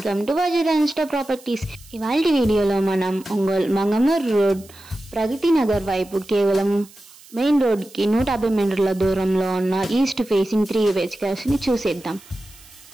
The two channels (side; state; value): right; noise; hiss, 23 dB below the sound